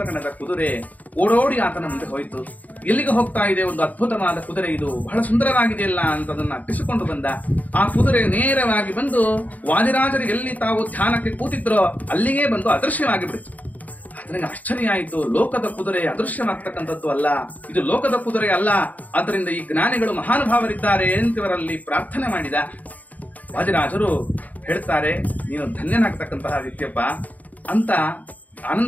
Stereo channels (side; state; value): right; late; 0.077 ms